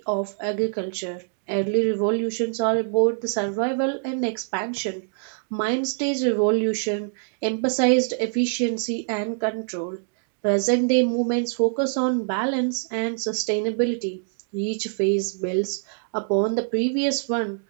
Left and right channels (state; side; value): silent; left; digital silence